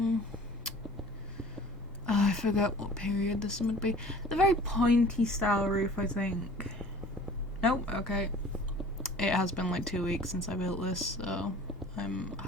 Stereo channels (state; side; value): normal; both; correlation 0.46